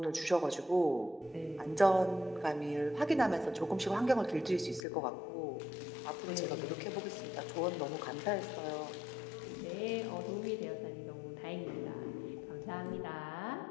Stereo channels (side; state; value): right; drops out; at 4.9 s